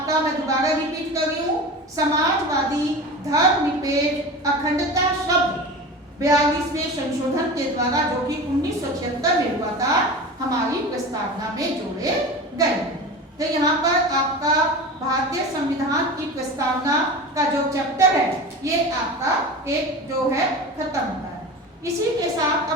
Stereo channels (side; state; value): both; normal; correlation 0.31